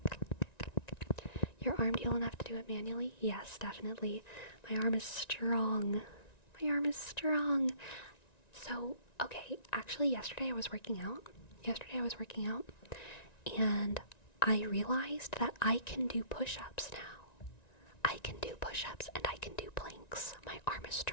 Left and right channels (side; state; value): right; late; 1.9 ms